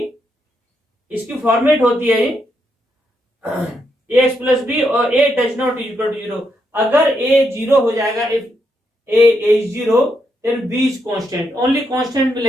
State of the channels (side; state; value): both; normal; correlation 0.80